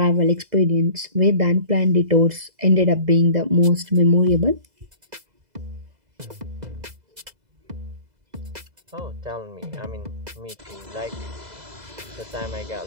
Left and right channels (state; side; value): late; left; 2.0 ms